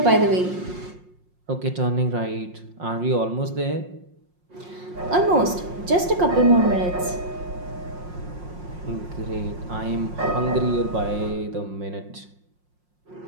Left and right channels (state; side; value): late; left; 5.6 ms